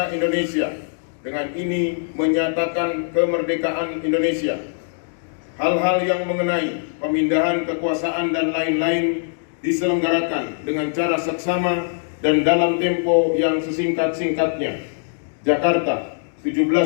Indonesia, dengan ini menyatakan kemerdekaan Indonesia. Hal-hal yang mengenai pemindahan kekuasaan dan lain-lain diselenggarakan dengan cara seksama dan dalam tempo yang sesingkat-singkatnya. Jakarta,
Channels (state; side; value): silent; right; digital silence